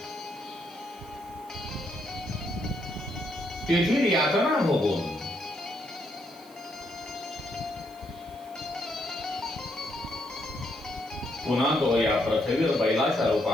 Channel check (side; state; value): right; noise; hiss, 25 dB below the sound